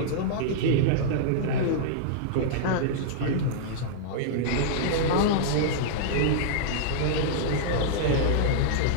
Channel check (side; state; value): both; different; correlation -0.02